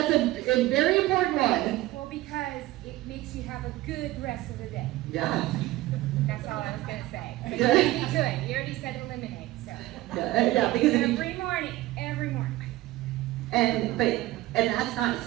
a very important one. Well, because it makes you have a good rest of the day. Yeah. That's all I was going to say. Good. You already do it. You already said eliminate. So Yeah, because every morning. And that's not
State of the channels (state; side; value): quieter; left; 17.2 dB